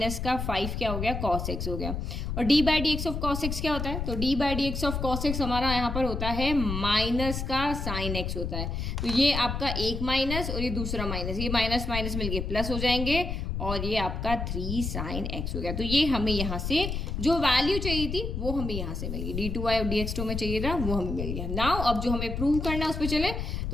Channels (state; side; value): noise; left; rumble, 3 dB below the sound